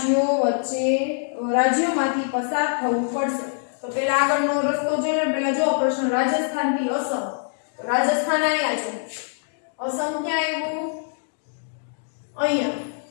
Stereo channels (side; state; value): right; silent; digital silence